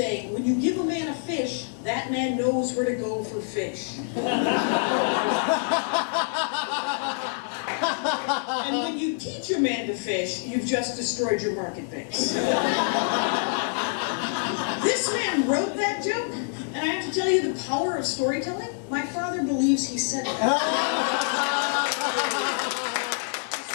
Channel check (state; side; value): silent; right; digital silence